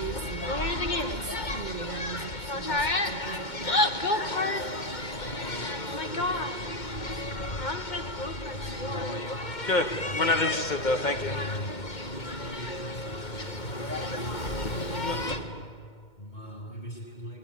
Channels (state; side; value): late; right; 2.2 ms